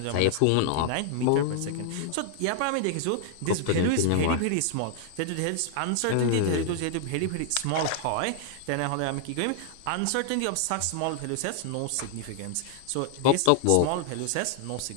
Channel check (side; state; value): both; different; correlation 0.00